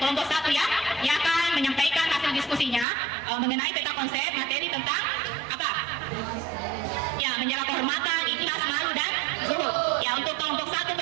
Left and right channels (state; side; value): drops out; left; at 2.9 s